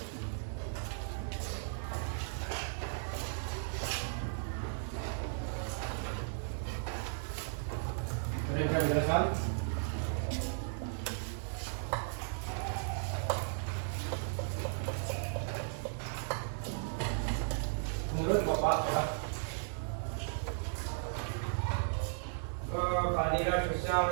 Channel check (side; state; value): left; silent; digital silence